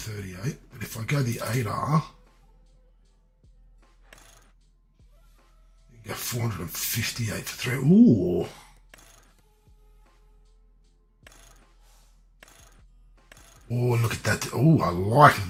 But if I go the 8R, you can go 458 for 3. Ooh. Oh, look at that. Oh, I like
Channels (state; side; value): identical; both; correlation 1.00